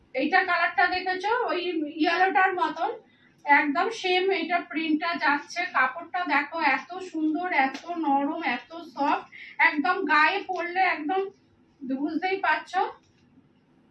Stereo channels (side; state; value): both; identical; correlation 1.00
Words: এইটা কালারটা দেখেছো, ওই ইয়েলোটার মতন একদম সেম এটা প্রিন্টটা যাচ্ছে। কাপড়টা দেখো এত সুন্দর, এত নরম, এত সফট, একদম গায়ে পরলে একদম বুঝতেই পারছো।